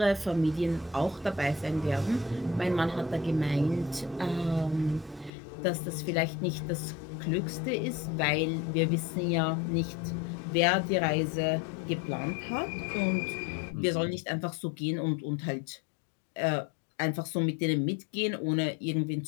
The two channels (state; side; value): drops out; right; at 5.3 s